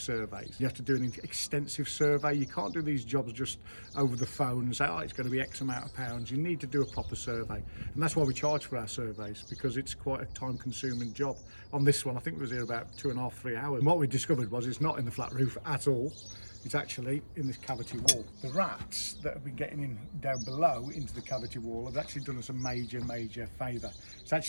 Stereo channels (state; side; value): inverted; both; correlation -1.00